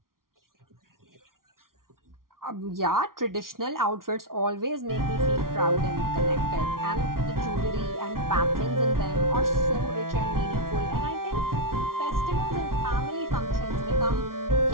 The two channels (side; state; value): left; late; 0.92 ms